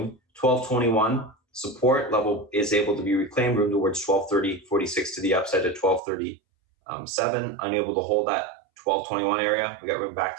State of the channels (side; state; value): left; drops out; at 6.0 s